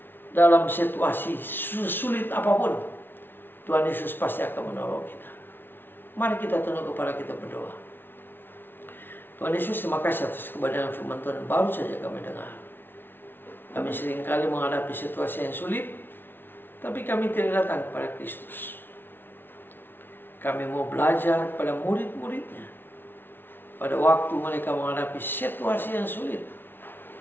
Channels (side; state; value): right; late; 0.10 ms